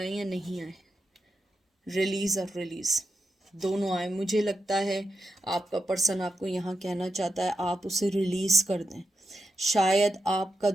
या नहीं आए, रिलीज और रिलीज दोनों आए। मुझे लगता है आपका पर्सन आपको यहाँ कहना चाहता है आप उसे रिलीज कर दें। शायद आपका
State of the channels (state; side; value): normal; both; correlation 0.87